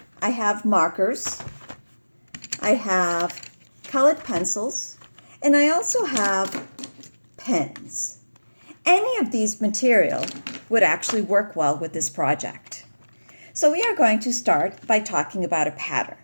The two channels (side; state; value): both; inverted; correlation -1.00